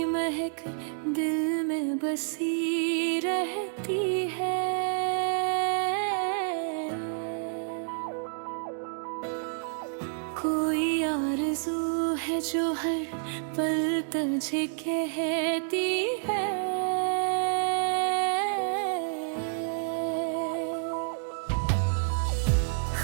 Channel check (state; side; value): silent; left; digital silence